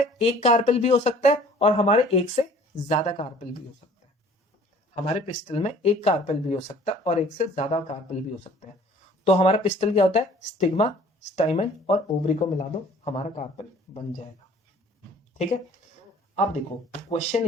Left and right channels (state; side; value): normal; both; correlation 0.52